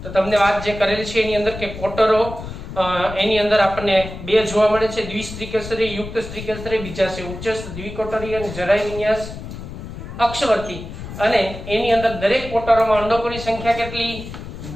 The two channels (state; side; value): noise; left; rumble, 10 dB below the sound